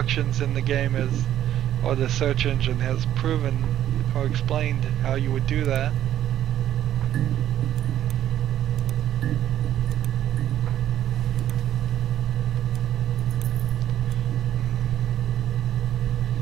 in the game or the search engine has proven or explained how you would do that.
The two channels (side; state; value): left; quieter; 11.5 dB